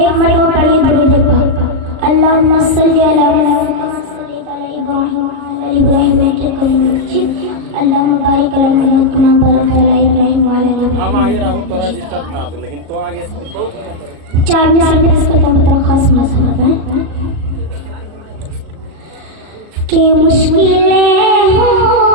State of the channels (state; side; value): late; left; 37 ms